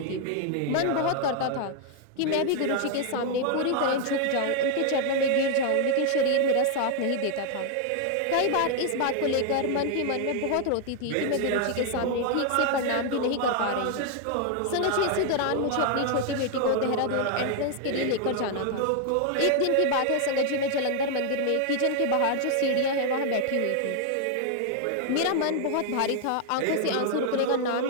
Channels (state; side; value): different; both; correlation 0.00